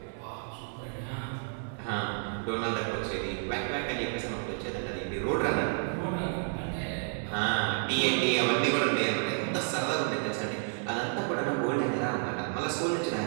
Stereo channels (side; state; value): left; silent; 57 dB below the other